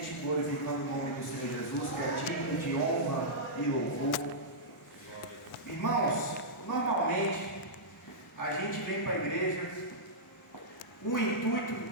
glorificando o nome do Senhor Jesus, que é digno de honra e louvor. Irmãos, normalmente a gente vem para a igreja com o intuito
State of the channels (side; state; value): both; normal; correlation -0.12